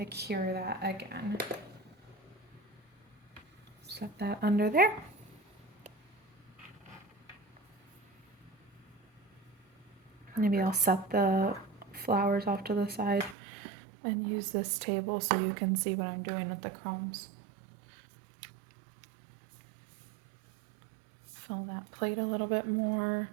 to cure that again. Set that under there. Maybe I'll set the flowers off to the side and use this table so you can see what I'm doing with the crumbs. Fill that plate a little bit more.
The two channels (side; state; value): left; drops out; at 13.4 s